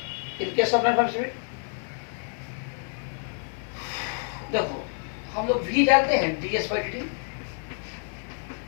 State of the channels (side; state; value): right; silent; 59 dB below the other